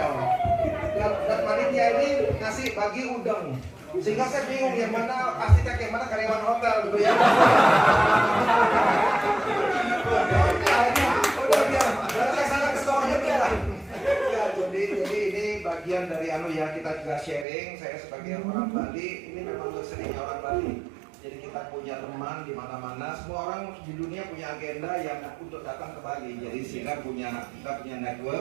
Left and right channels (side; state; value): left; drops out; at 17.4 s